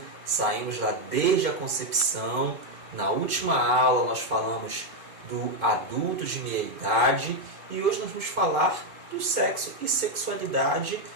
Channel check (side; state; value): left; late; 2.5 ms